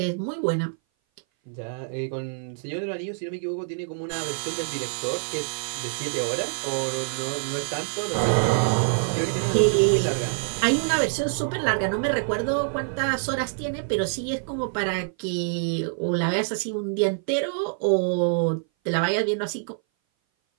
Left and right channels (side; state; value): left; silent; 57 dB below the other